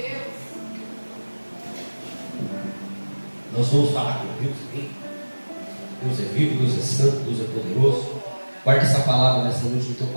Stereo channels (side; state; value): both; inverted; correlation -1.00